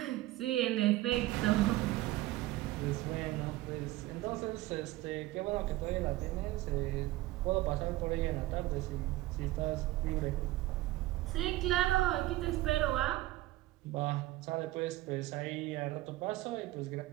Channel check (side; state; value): left; quieter; 17.2 dB